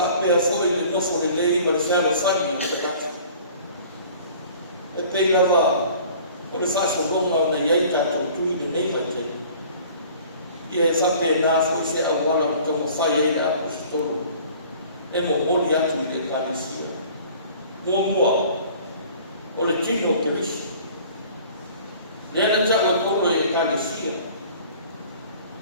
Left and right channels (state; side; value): inverted; both; correlation -0.48